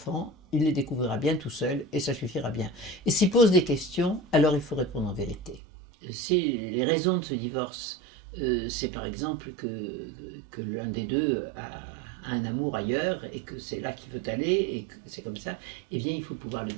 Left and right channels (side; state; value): left; drops out; at 5.6 s